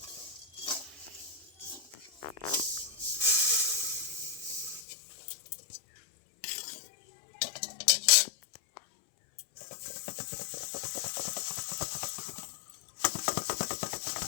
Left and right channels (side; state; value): right; drops out; at 4.9 s